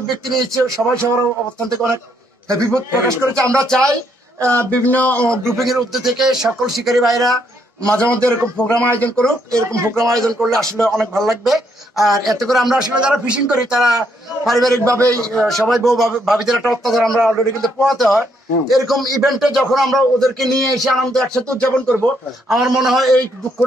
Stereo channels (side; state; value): both; normal; correlation 0.73